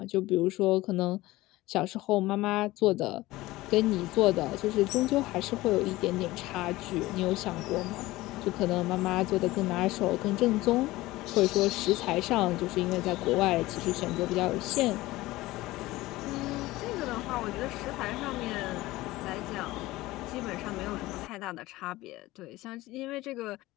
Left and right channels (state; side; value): quieter; right; 18.4 dB